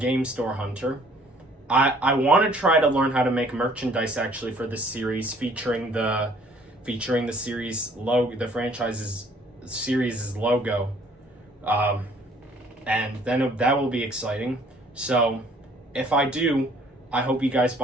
Store Hunter. I want to try to learn how to make merchandise actually for this series, featuring the series logo, the franchise's series' logo, and then that will be exciting. So if I do, I hope you guys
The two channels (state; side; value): normal; both; correlation 0.58